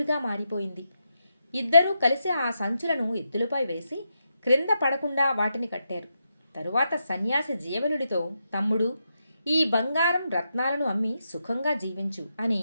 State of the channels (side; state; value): both; inverted; correlation -0.84